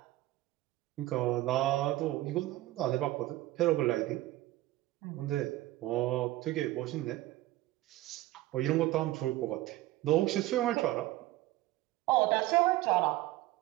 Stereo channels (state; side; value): quieter; left; 16.8 dB